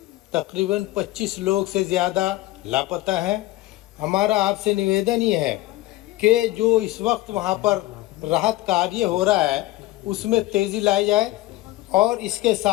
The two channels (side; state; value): right; quieter; 17.4 dB